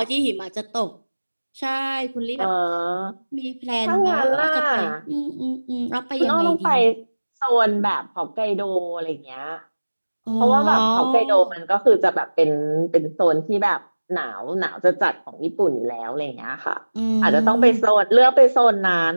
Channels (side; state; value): both; inverted; correlation -1.00